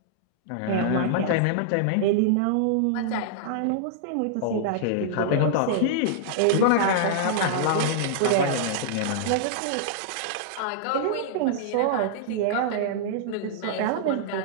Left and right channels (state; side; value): different; both; correlation -0.01